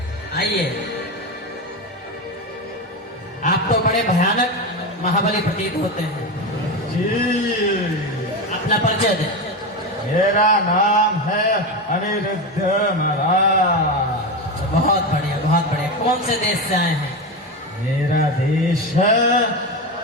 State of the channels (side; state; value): both; normal; correlation 0.18